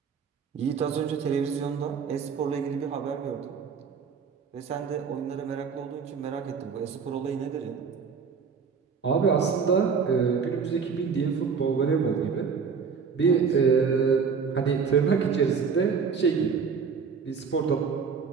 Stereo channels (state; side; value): quieter; left; 5.9 dB